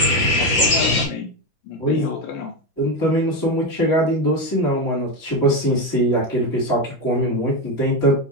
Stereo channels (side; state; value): both; normal; correlation 0.12